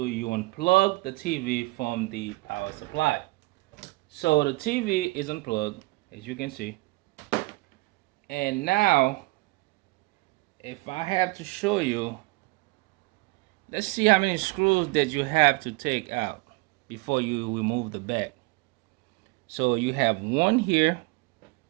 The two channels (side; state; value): left; quieter; 23.7 dB